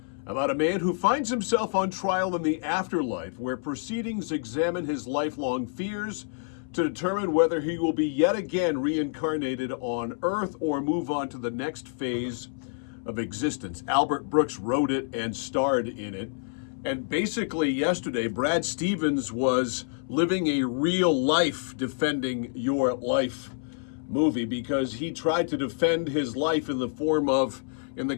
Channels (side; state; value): right; silent; 60 dB below the other